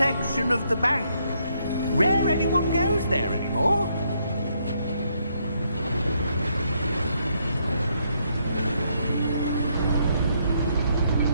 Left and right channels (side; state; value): both; inverted; correlation -0.74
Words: of the bank. Rare anyone goes there anymore.